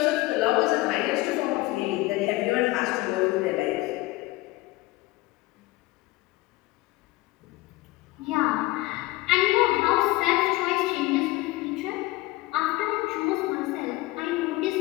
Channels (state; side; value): quieter; right; 19.9 dB